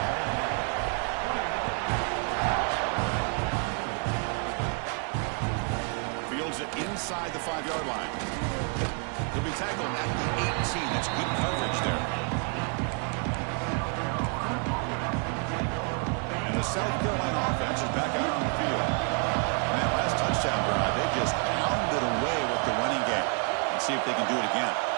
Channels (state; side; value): quieter; left; 38.2 dB